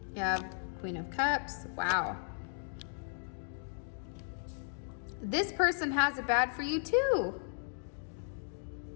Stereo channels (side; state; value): right; silent; digital silence